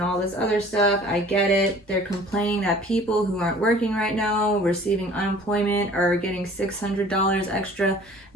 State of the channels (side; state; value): both; normal; correlation 0.49